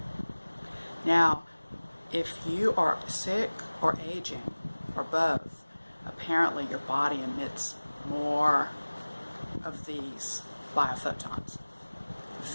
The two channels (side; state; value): both; inverted; correlation -1.00